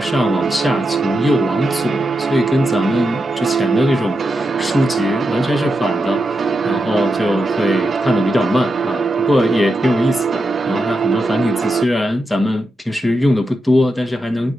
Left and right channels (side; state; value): both; normal; correlation 0.87